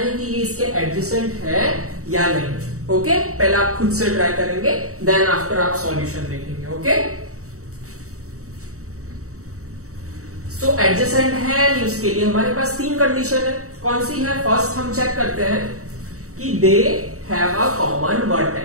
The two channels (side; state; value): left; late; 0.65 ms